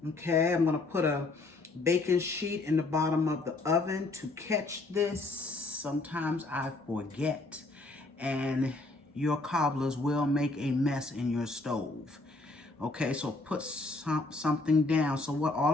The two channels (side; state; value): right; quieter; 3.3 dB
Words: Okay, I'm going to put a baking sheet in the bottom of the oven to catch this. Sometimes I forget, and your cobblers will make a mess in your stove. Okay, so put something down. So